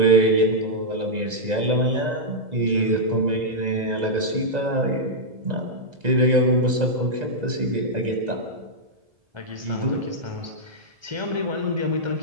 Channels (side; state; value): left; late; 1.9 ms